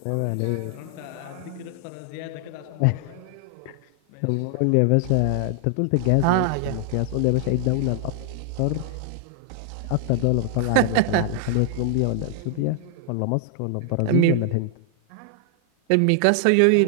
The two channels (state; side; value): different; both; correlation 0.00